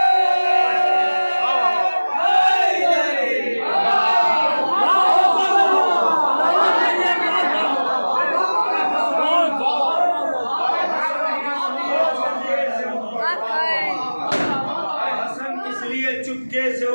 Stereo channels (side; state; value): both; inverted; correlation -1.00